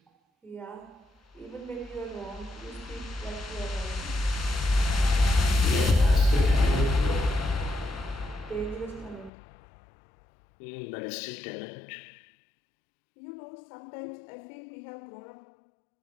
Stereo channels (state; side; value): drops out; right; at 9.3 s